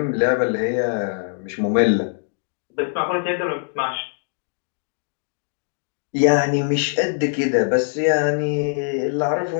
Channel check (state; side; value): silent; right; 59 dB below the other